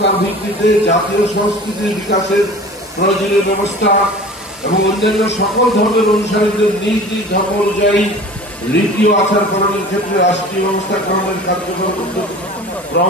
ভিত্তিতে জাতীয় সংস্কৃতির বিকাশের প্রয়োজনীয় ব্যবস্থা এবং অন্যান্য সকল ধর্মের অনুসারীদের নিজ নিজ ধর্ম অনুযায়ী রীতি ও আচার পালনের ক্ষেত্রে রাষ্ট্রীয় ব্যবস্থা গ্রহণের কার্যকর উদ্যোগ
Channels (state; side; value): normal; both; correlation 0.40